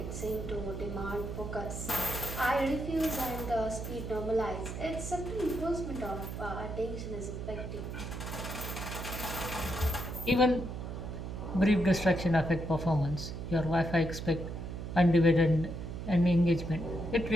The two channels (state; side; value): noise; right; hum, 7 dB below the sound